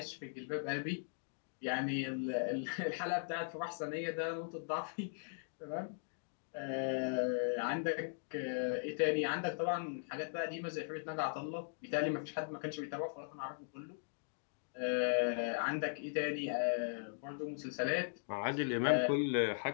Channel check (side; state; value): right; silent; digital silence